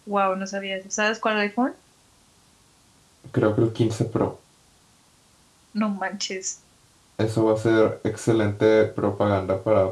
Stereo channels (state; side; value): identical; both; correlation 1.00